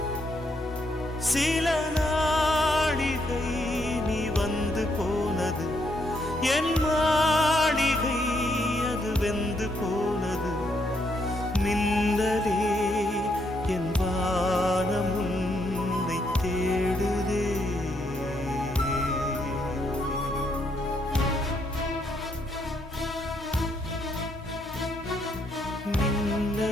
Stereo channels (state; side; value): normal; both; correlation 0.75